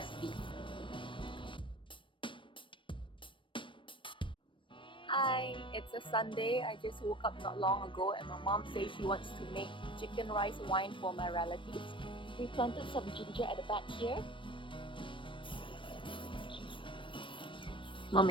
Hi, it's a Sunday. I just woke up not long ago and my mom says she wants to make chicken rice wine for my relatives. We planted some ginger at the back here.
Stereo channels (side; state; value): right; late; 0.25 ms